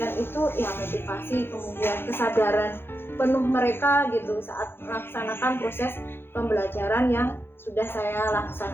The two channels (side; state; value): right; late; 0.11 ms